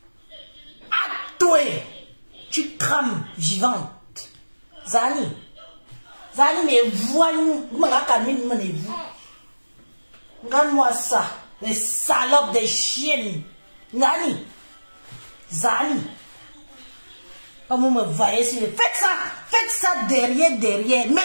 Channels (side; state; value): both; inverted; correlation -1.00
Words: À toi, tu crames vivante. Zani, mais voyons, vous. Regarde-moi ça, les salopes des chiennes. Zani, comme vous me voyez, faites ça derrière.